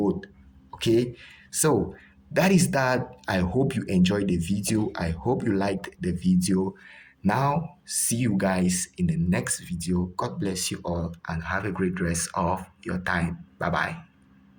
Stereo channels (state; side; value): identical; both; correlation 1.00